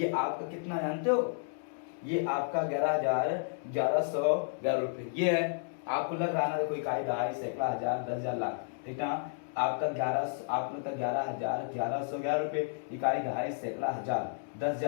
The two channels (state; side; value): silent; right; digital silence